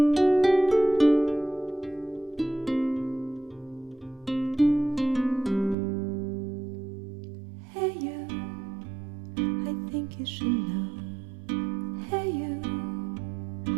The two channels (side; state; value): left; drops out; at 5.8 s